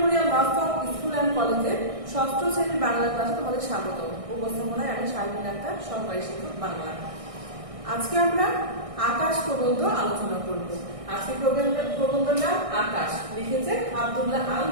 বাস্তব স্কুল অ্যান্ড কলেজের ষষ্ঠ শ্রেণীর বাংলা ক্লাসে তোমাদের স্বাগত। উপস্থাপনায় আমি শারমিন আক্তার, সহকারী শিক্ষক বাংলা। আজকে আমরা আকাশ প্রবন্ধ আলোচনা করব। আজকে প্রবন্ধের নাম আকাশ, লিখেছে আব্দুল্লাহ আল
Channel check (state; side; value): late; left; 1.6 ms